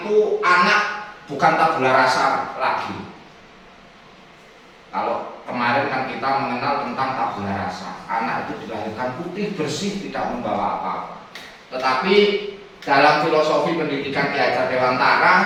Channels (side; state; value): both; identical; correlation 1.00